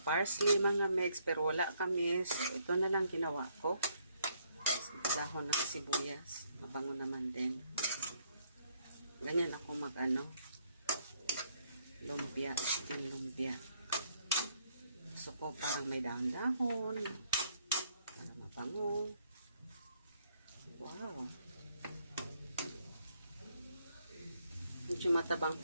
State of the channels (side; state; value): both; inverted; correlation -0.70